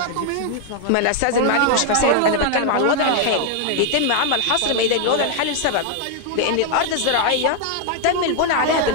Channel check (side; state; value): both; different; correlation 0.00